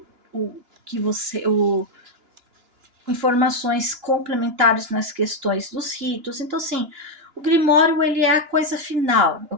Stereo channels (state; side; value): late; left; 2.9 ms